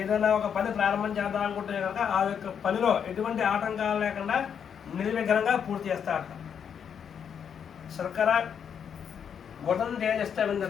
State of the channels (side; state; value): right; quieter; 7.7 dB